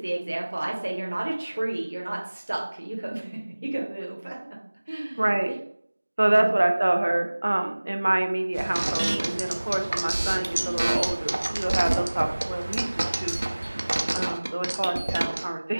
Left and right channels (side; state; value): both; inverted; correlation -1.00